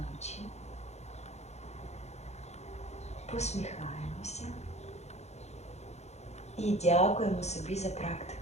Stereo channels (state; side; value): late; right; 0.32 ms